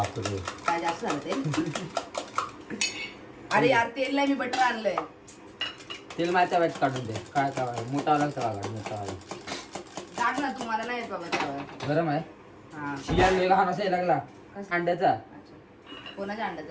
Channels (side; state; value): both; identical; correlation 1.00